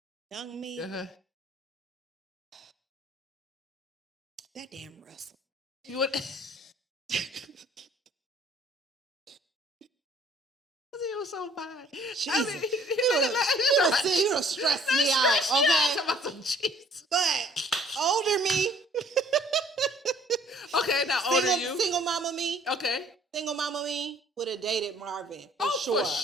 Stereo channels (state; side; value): normal; both; correlation 0.58